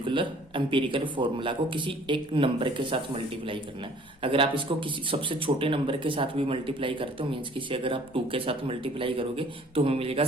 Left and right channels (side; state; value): both; normal; correlation 0.54